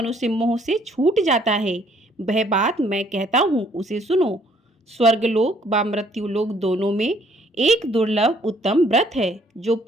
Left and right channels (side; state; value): both; normal; correlation 0.63